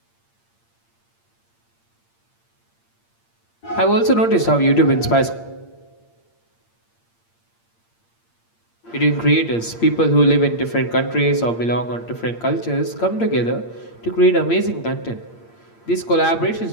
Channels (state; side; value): late; right; 8.7 ms